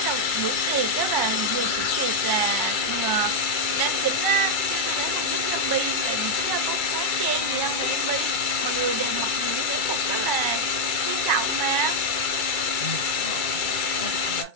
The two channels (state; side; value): late; right; 2.2 ms